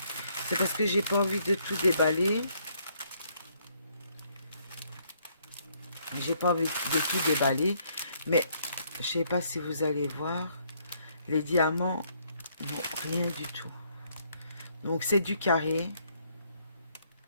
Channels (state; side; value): inverted; both; correlation -0.69